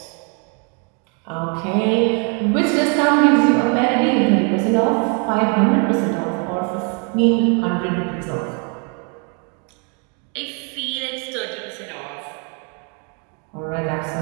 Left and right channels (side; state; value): left; quieter; 36.9 dB